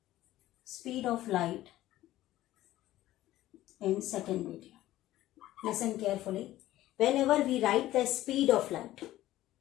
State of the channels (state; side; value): quieter; right; 14.9 dB